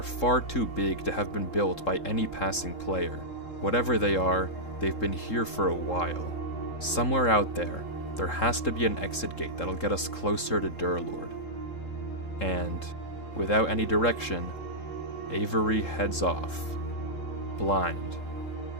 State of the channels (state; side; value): late; right; 3.7 ms